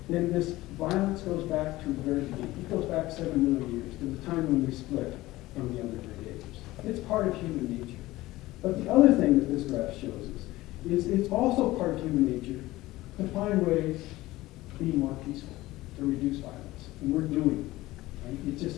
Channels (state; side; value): quieter; right; 18.0 dB